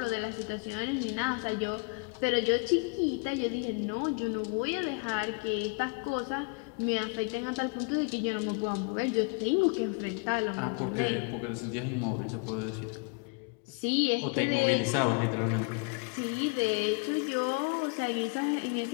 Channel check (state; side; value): quieter; right; 30.7 dB